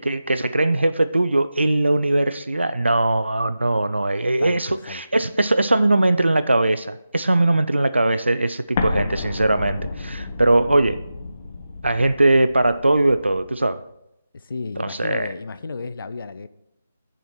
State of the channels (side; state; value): both; inverted; correlation -0.92